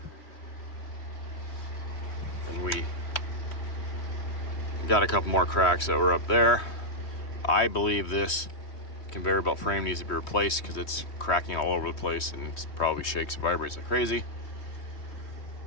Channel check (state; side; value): late; right; 3.4 ms